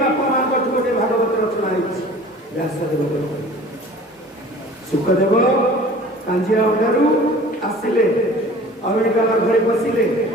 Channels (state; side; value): normal; both; correlation 0.45